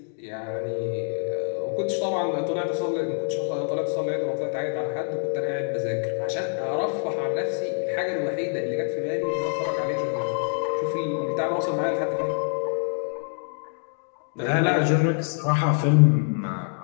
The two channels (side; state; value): right; silent; digital silence